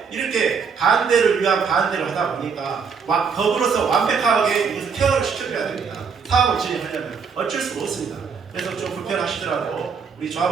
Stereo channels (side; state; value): left; quieter; 5.9 dB